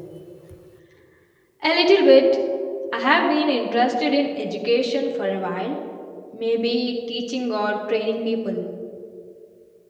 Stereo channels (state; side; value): identical; both; correlation 1.00